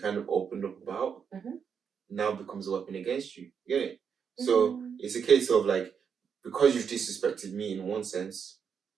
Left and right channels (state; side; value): quieter; left; 6.9 dB